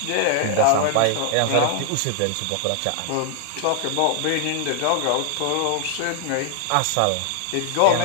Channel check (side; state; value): both; different; correlation 0.00